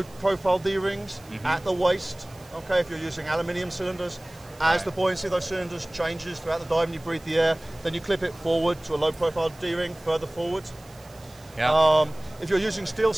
profile D-rings at the waist. Okay, if you're using aluminium cylinders, as the buoyancy of those cylinders changes throughout the dive and you breathe the air, then you clip it forward to a low profile D-ring further forward. Yeah. If you're using steel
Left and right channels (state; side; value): noise; right; hiss, 25 dB below the sound